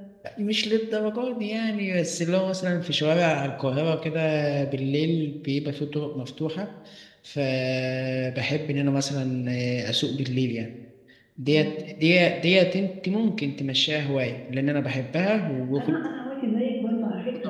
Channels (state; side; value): identical; both; correlation 1.00